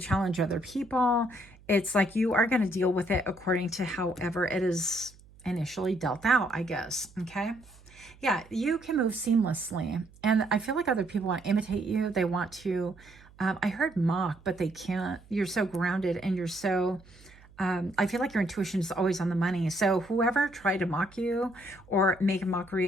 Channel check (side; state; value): right; noise; hum, 25 dB below the sound